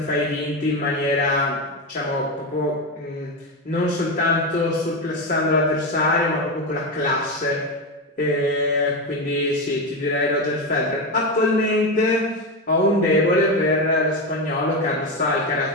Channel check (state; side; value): normal; both; correlation 0.14